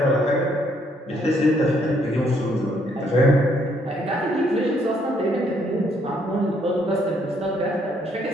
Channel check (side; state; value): both; normal; correlation 0.69